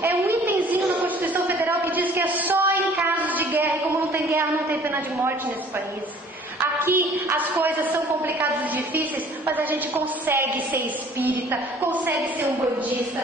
é um itemzinho na Constituição Federal que diz que é só em casos de guerra, e como não tem guerra, não tem pena de morte nesse país. Aqui as coisas são complicadas e difíceis, mas a gente consegue ser espírita, consegue ser umbandista,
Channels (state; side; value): normal; both; correlation 0.53